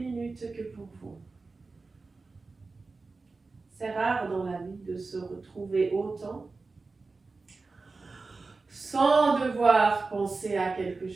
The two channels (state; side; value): quieter; left; 3.9 dB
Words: que pour vous. C'est rare dans la vie de se retrouver autant sans devoir penser à quelque